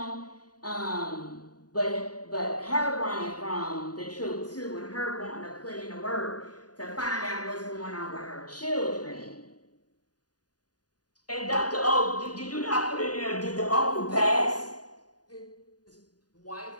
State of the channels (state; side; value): late; right; 0.69 ms